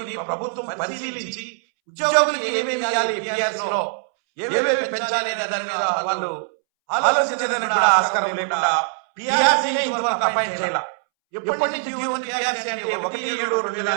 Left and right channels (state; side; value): silent; left; 64 dB below the other